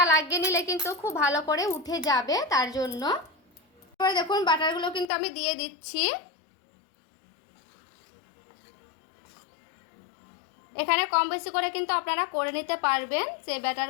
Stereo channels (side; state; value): right; drops out; at 5.1 s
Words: লাগিয়ে নিলে কিন্তু খুব ভালো করে উঠে যাবে, তার জন্য। এবার দেখুন বাটারগুলো কিন্তু আমি দিয়ে দিচ্ছি। এখানে কম বেশি করে কিন্তু আপনারা করে নিতে পারবেন সেই